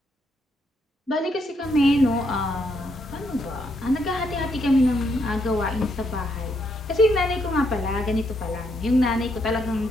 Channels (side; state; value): both; normal; correlation 0.76